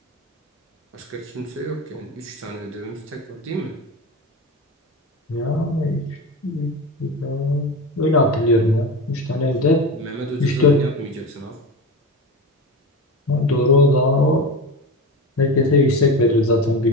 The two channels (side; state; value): both; normal; correlation 0.25